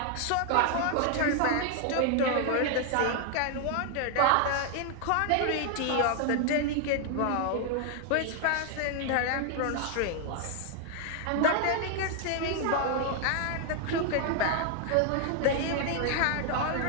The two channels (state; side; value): different; both; correlation 0.00